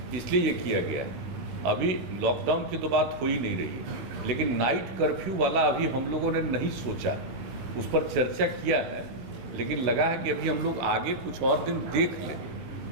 इसलिए ये किया गया है। अभी लॉकडाउन की तो बात हो ही नहीं रही, लेकिन नाइट कर्फ्यू वाला अभी हम लोगों ने नहीं सोचा, उस पर चर्चा किया है, लेकिन लगा है कि अभी हम लोग आगे कुछ और दिन देख लें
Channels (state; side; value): late; left; 16 ms